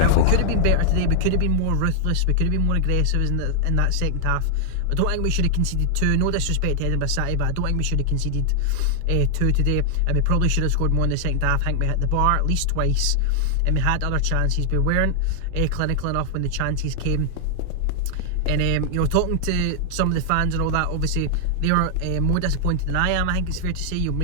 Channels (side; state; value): both; different; correlation 0.00